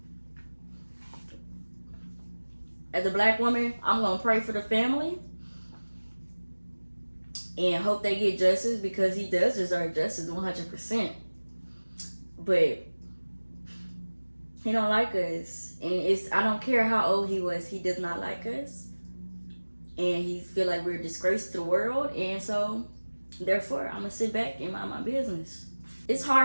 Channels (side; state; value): both; inverted; correlation -1.00